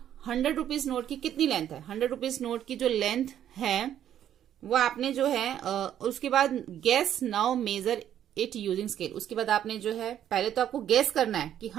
100 rupees note की कितनी लेंथ है, 100 रुपीज नोट की जो लेंथ है वो आपने जो है उसके बाद gas now major it using scale. उसके बाद आपने जो है पहले तो आपको गैस करना है कि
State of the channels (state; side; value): quieter; left; 10.6 dB